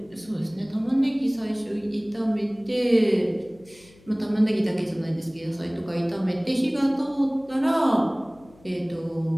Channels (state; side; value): noise; left; hum, 27 dB below the sound